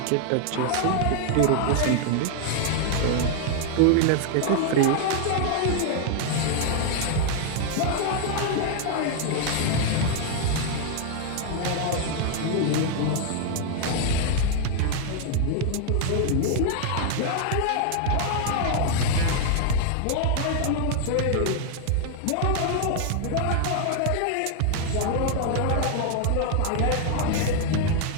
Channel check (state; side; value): different; both; correlation 0.00